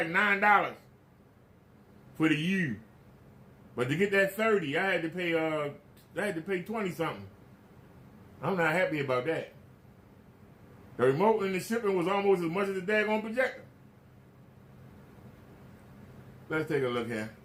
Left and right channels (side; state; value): both; identical; correlation 1.00